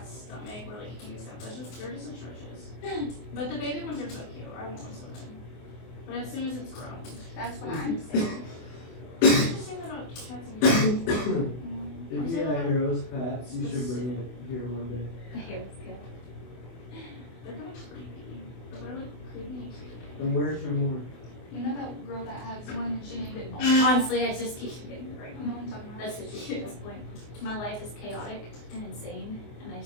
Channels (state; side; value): late; right; 24 ms